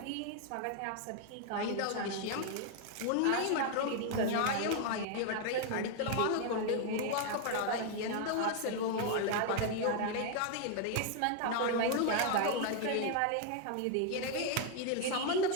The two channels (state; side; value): different; both; correlation 0.00